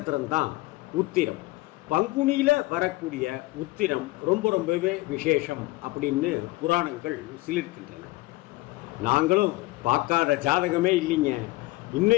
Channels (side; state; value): right; quieter; 20.2 dB